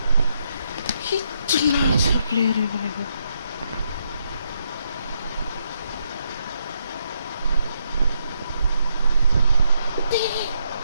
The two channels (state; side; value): inverted; both; correlation -0.78